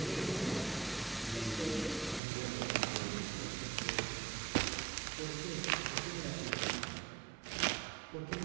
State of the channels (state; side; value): drops out; left; at 2.2 s